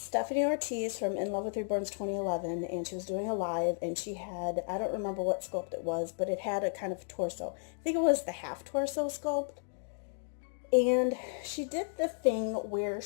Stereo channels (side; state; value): right; silent; digital silence